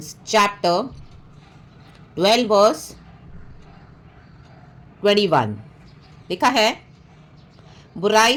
chapter 12 verse 21. लिखा है, बुराई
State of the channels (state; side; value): identical; both; correlation 1.00